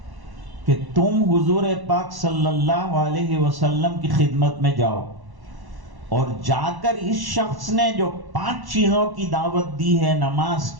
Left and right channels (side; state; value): left; late; 1.1 ms